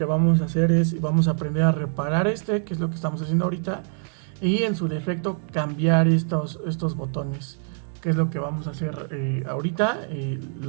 vamos a hacer es, vamos a aprender a reparar que es lo que estamos haciendo ahorita, y en su defecto cambiar estos botones, que es lo que vamos a hacer ahorita.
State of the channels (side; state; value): left; silent; 57 dB below the other